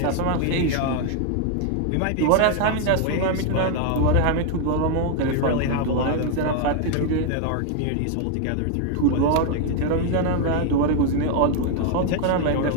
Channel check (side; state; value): both; different; correlation 0.01